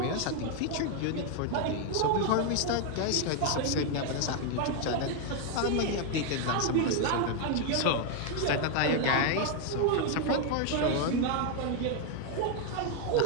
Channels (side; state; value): both; different; correlation 0.01